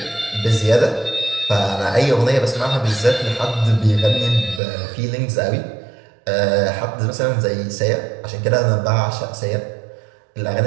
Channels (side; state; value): left; drops out; at 4.6 s